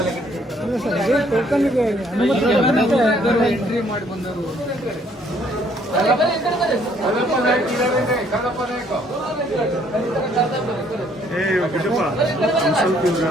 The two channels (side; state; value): both; normal; correlation 0.64